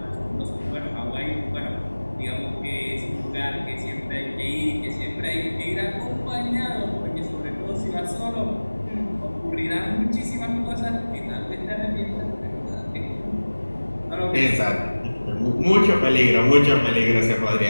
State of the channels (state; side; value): inverted; both; correlation -1.00